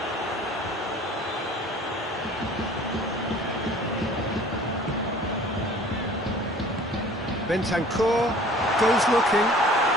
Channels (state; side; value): normal; both; correlation 0.48